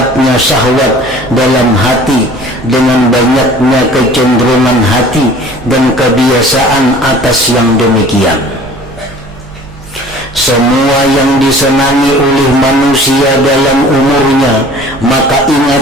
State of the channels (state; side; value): noise; right; rumble, 21 dB below the sound